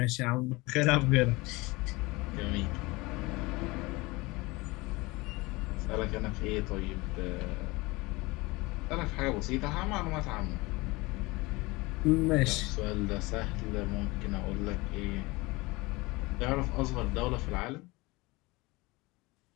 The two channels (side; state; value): right; quieter; 23.1 dB